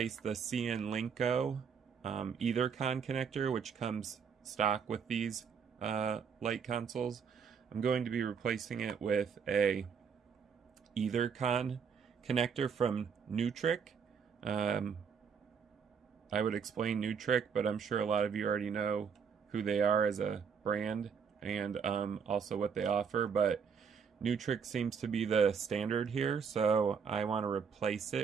the CN Linko EtherCon connector, which comes stock with these light consoles. I'm going to be replacing it with a EtherCon connector from Nutric. I would explain Nutric, but I'm sure a lot of you already know who they are as a brand and also what they offer, but Nutric seems to be the standard here, so I want to replace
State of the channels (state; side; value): quieter; left; 6.5 dB